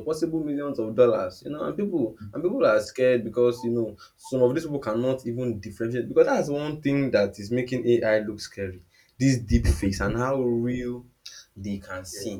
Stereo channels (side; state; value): both; identical; correlation 1.00